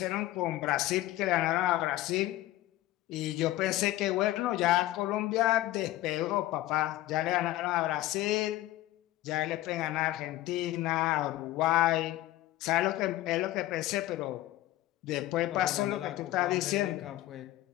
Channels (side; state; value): right; quieter; 15.7 dB